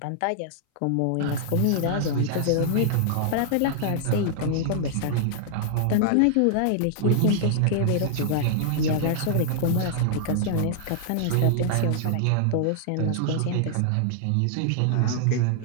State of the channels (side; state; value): both; different; correlation -0.01